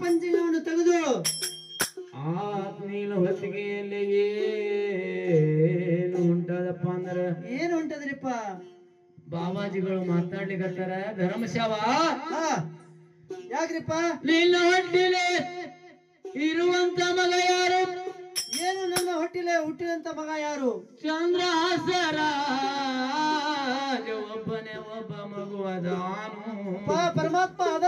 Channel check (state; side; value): identical; both; correlation 1.00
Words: ಪಂಚಂಗವನ್ನು ತೆಗೆದು ಆ ನೀನು ಹೊತ್ತಿಗೆಯಲ್ಲಿ ಏನು ಉಂಟದಪ್ಪ ಅಂದ್ರ ಏನು ಉಂಟದ್ರಿಪ್ಪ ಬಾಬಾಜಿಗಳು ಮಾತಾಡ್ಲಿಕತ್ತಾರ. ಧರ್ಮಶಾವ ಯಾಕ್ರಿಪ್ಪ ನಿನ್ನ ಹೊಟ್ಟಿಲೆ ಇರುವಂತ ಮಗ ಯಾರು? ಏನು ನನ್ನ ಹೊಟ್ಟಿಲೆ ಹುಟ್ಟಿದಂತ ಮಗ ಯಾರು? ಚಂದ್ರಹಾಸರ ಒಬ್ಬನೇ ಒಬ್ಬ ಮಗು ಅದಾನು. ಪರಮಾತ್ಮ